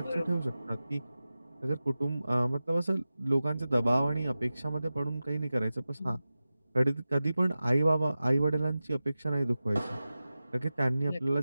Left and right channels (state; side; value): inverted; both; correlation -0.95